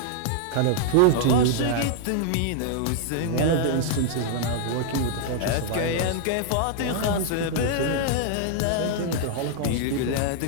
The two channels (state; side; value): different; both; correlation 0.00